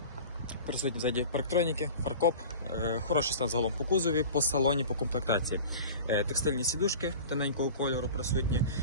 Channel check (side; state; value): both; inverted; correlation -0.38